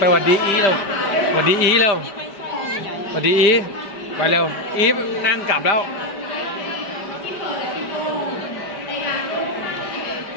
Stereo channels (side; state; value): right; late; 5.1 ms